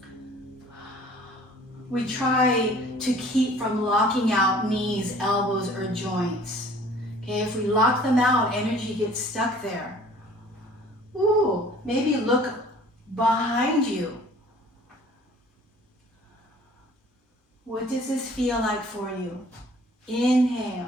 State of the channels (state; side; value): normal; both; correlation 0.51